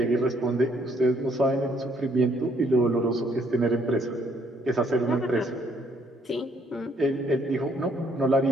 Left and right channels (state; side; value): normal; both; correlation 0.68